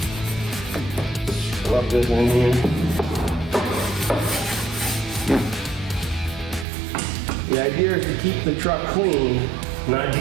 Rub this in here. The idea is to keep the truck clean, not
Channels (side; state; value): left; drops out; at 6.7 s